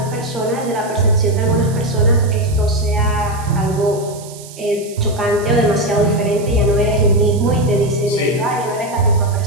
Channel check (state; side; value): noise; right; hiss, 18 dB below the sound